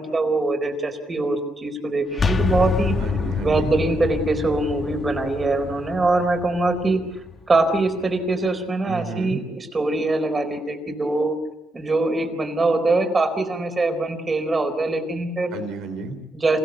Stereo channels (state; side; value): normal; both; correlation 0.81